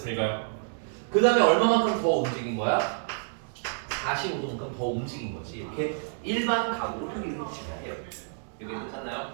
그 다음에 얼마만큼 더 움직인 거야? 45도만큼 더 움직인 거지. 이렇게 일반 각으로 표기를 해주시면 해요. 여기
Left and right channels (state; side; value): silent; left; digital silence